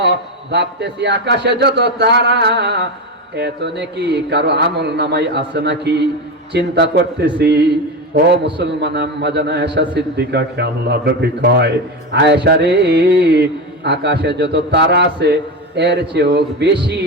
ভাবতেছি আকাশে যত তারা এত নাকি কারো আমল নামাই আছে নাকি চিন্তা করতেছি। ও মুসলমান আম্মা জান আয়েশা সিদ্দিকাকে আল্লাহ নবী কয়, আয়েশা রে, আকাশে যত তারা আছে এর চেয়েও বেশি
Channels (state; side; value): normal; both; correlation 0.18